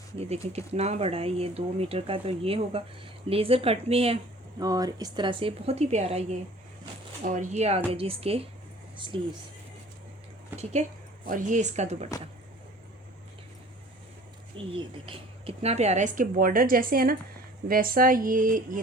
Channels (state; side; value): normal; both; correlation 0.48